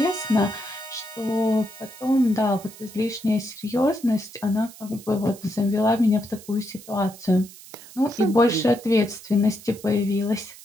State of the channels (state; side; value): noise; right; hiss, 19 dB below the sound